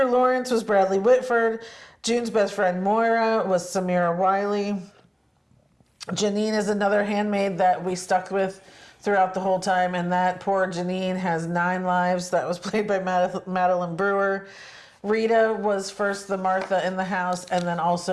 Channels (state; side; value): identical; both; correlation 1.00